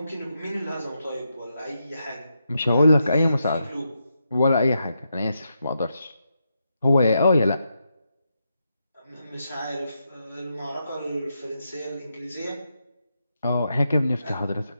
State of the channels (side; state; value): both; inverted; correlation -0.84